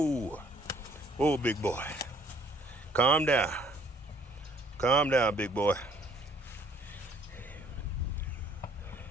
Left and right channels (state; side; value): normal; both; correlation 0.60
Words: Whoa, big boy. Calm down. Calm down, big boy.